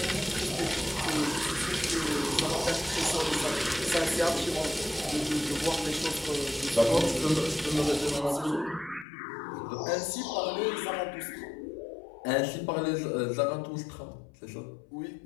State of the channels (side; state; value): right; drops out; at 9.1 s